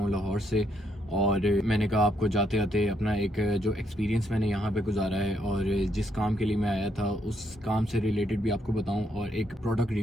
लाहौर से। और मैंने कहा आपको जाते आते अपना एक जो एक्सपीरियंस मैंने यहाँ पे गुजारा है और जिस काम के लिए मैं आया था उस काम से रिलेटेड भी आपको बताऊँ और एक प्रोडक्ट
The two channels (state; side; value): normal; both; correlation 0.74